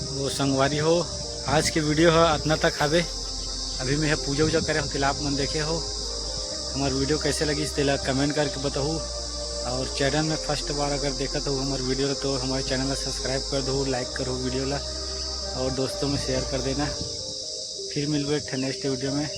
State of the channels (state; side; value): identical; both; correlation 1.00